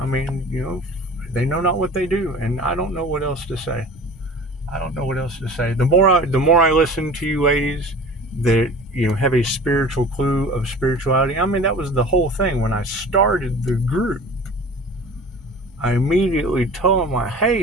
mean, you know, they know not what they do, and I don't know what else to say. I don't know what else to say. The more I listen to you ladies that, you know, have a spiritual clue of spirituality. I mean, that was the whole thing when I started the group. I immediately told them, like,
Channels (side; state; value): both; normal; correlation 0.41